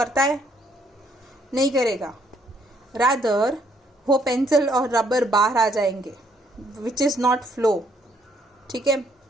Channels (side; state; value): both; normal; correlation 0.68